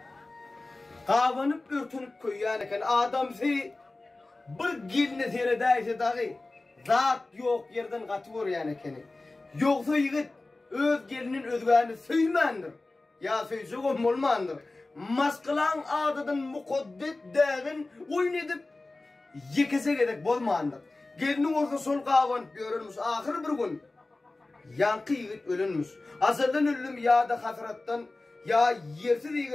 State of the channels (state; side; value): quieter; right; 3.1 dB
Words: Qavanıp örtünüp koyyan ekeni. Adamsı bir gelini seredaysa dağı zat yok yerden katıvor yani ekeni. Yoksa yigit öz gelinin özgani söymandır. Ya söyse olmandır. Maskılan adadan mukaddet dağın oyun edip yekese gedek bolmandır. Gelinin orta sol qavanıp görünmüş. Ahir bir gün yankı yigit ölünmüş. Asırdan ölüm ya da hasrattan ya yersiz